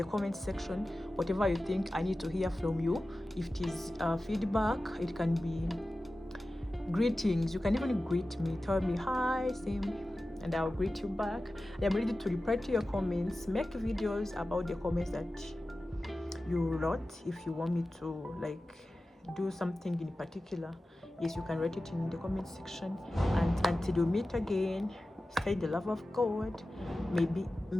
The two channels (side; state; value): both; normal; correlation 0.95